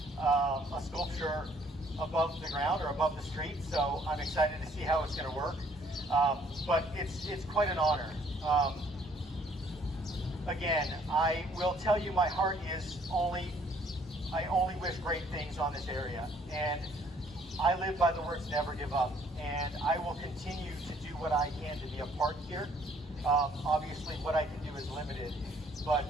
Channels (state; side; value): normal; both; correlation 0.62